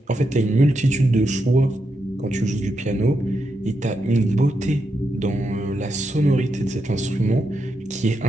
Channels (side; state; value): both; normal; correlation 0.84